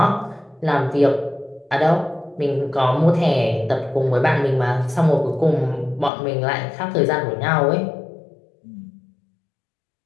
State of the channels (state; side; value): drops out; right; at 6.1 s